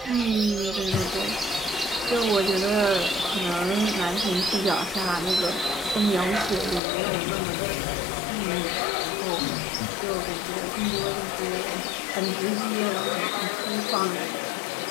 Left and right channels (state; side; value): drops out; right; at 6.8 s